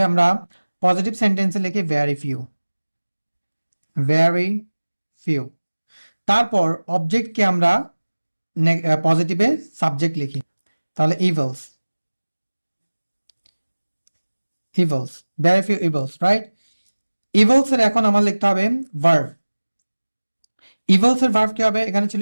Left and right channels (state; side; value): inverted; both; correlation -1.00